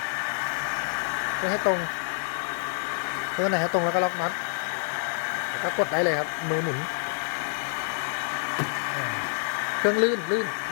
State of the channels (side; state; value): right; silent; 60 dB below the other